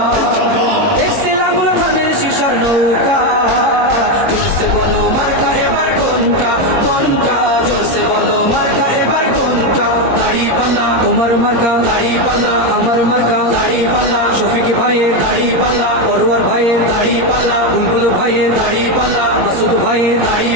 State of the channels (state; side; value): late; left; 22 ms